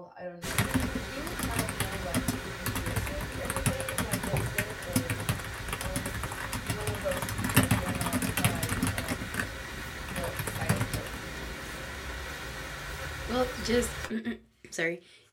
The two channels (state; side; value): identical; both; correlation 1.00